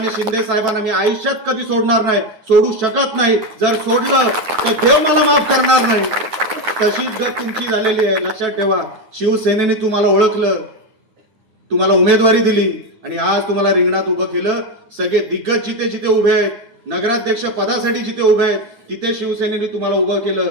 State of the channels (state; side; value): late; left; 9.2 ms